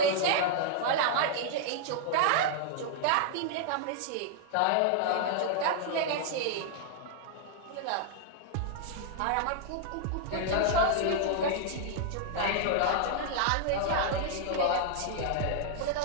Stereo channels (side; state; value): both; different; correlation 0.00